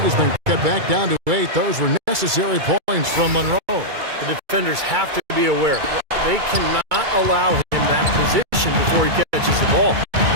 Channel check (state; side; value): late; left; 2.3 ms